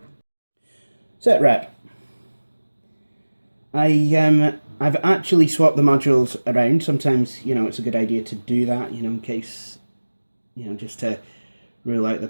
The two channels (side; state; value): both; inverted; correlation -1.00